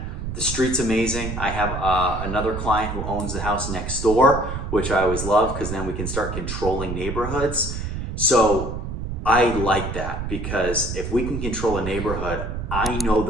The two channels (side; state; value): right; noise; rumble, 5 dB below the sound